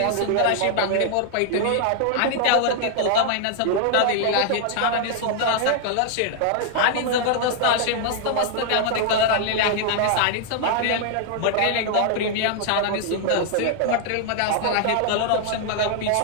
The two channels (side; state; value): both; different; correlation 0.00